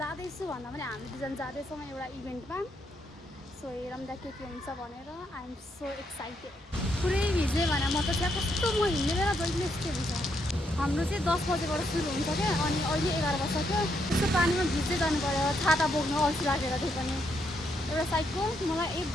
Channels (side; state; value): both; normal; correlation 0.77